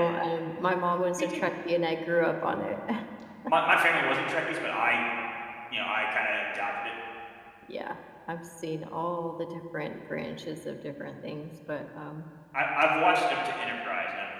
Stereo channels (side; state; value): both; identical; correlation 1.00